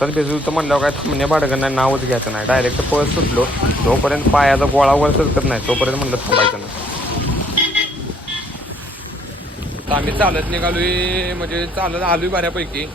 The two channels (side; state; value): both; normal; correlation 0.64